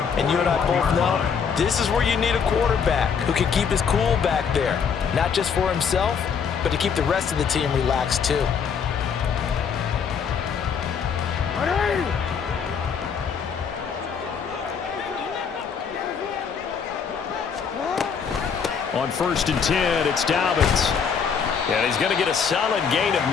And you and I both know this is where you need a quarterback who can keep his cool back there, not just for himself, but to keep the rest of the team relaxed too. On 1st and 10, it's Dobbins. And he's going to get a solid gain of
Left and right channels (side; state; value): right; quieter; 6.6 dB